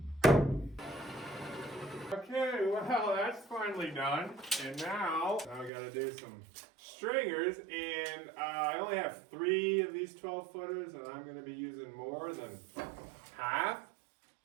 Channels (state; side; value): drops out; left; at 5.7 s